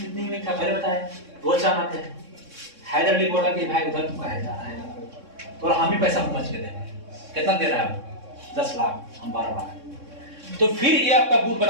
था, पहले बताया रोज जाना थे। हैदर अली बोला कि भाई उधर तुम कहे जा रहा है, तो हम ही पैसा समझ के देंगे। कितना दे रहा है? 10 लाख, हम 12 लाख। तो फिर ये आपका गुट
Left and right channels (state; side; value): late; left; 3.6 ms